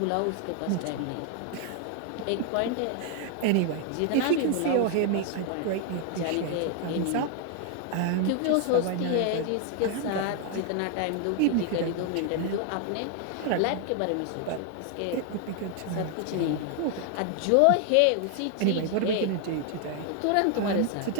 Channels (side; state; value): both; different; correlation 0.00